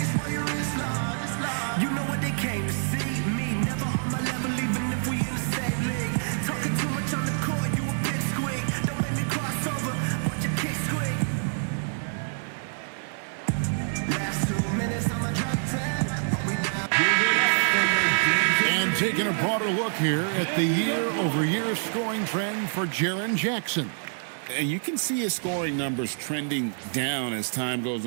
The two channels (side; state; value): left; silent; 60 dB below the other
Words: broader look here at the year-over-year scoring trend for Jaren Jackson. And you can see his scoring numbers trending down as time goes